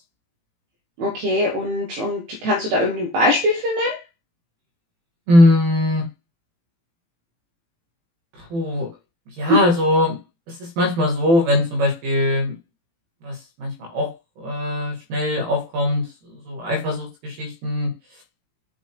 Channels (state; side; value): late; left; 18 ms